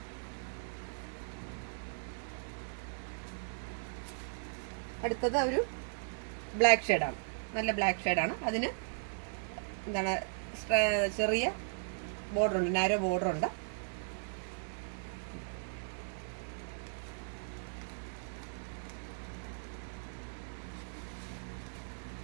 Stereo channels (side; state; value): left; silent; digital silence